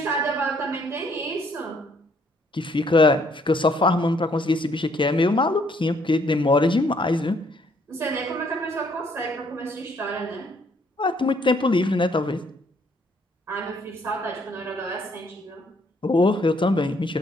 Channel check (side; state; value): both; normal; correlation 0.66